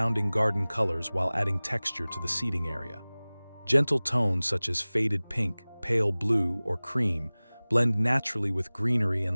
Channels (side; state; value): both; inverted; correlation -1.00